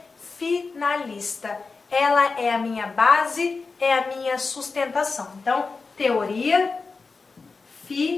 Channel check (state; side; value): quieter; right; 4.3 dB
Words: finalista. Ela é a minha base, é a minha sustentação. Então, teoria